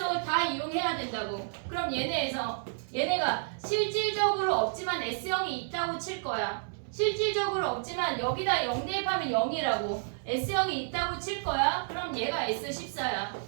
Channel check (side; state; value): left; silent; 57 dB below the other